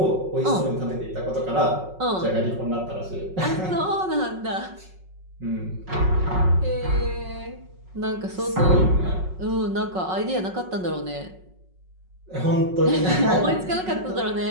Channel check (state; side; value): late; left; 5.4 ms